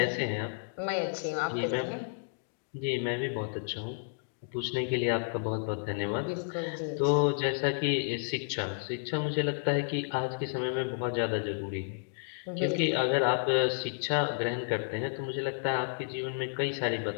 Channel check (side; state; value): right; silent; digital silence